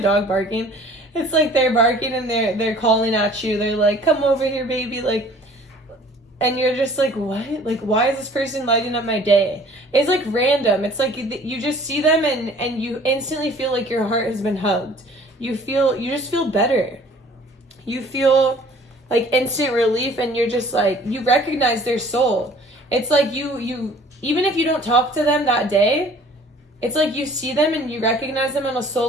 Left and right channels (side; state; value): both; normal; correlation 0.52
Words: barking? It's like they're barking and they're calling at you. They're like, come over here, baby, like. And you're just like, what? Like, why is this person lighting up my day? It's like random. It's like you just see them and you instantly feel like your heart has been hugged. You just feel better. You feel like instant relief, and you're just like, you recognize their soul. It's like you even if you don't talk to them that day, it's like you see them and you recognize them on a soul